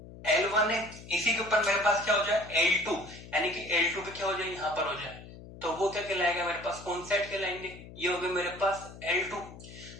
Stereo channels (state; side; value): noise; left; hum, 16 dB below the sound